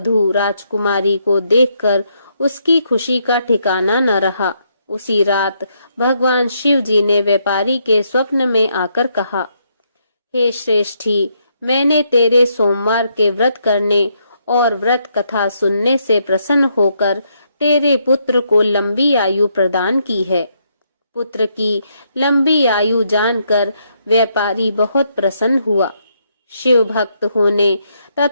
राजकुमारी को देखकर उसकी खुशी का ठिकाना न रहा। उसी रात भगवान शिव जी ने व्यापारी के स्वप्न में आकर कहा, हे श्रेष्ठी, मैंने तेरे सोमवार के व्रत करने और व्रत कथा सुनने से प्रसन्न होकर तेरे पुत्र को लंबी आयु प्रदान की है। पुत्र की लंबी आयु जानकर व्यापारी बहुत प्रसन्न हुआ। शिव भक्त होने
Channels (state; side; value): inverted; both; correlation -0.76